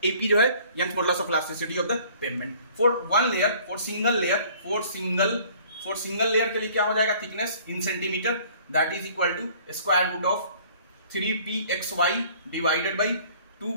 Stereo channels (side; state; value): both; inverted; correlation -0.54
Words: AP जो है Young's modulus of elasticity of the pavement. For single layer के लिए क्या हो जाएगा, thickness in centimeter, that is equal to square root of 3pxy divided by 2